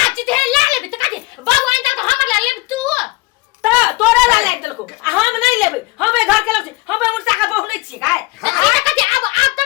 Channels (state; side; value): quieter; right; 22.7 dB